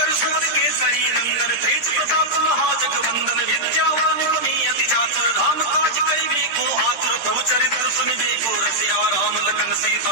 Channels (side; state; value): right; late; 13 ms